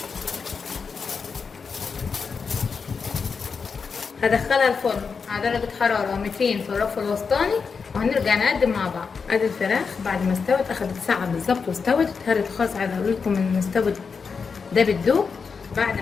هدخلها الفرن على درجة حرارة 200 في الرف الوسطاني وهنرجع نقدم مع بعض. ادي الفراخ بعد ما استوت، اخدت ساعة بالظبط واستوت. اتهرت خالص. عايزة اقول لكم ان استوت ده بالدوب. بعد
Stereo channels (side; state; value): right; quieter; 5.4 dB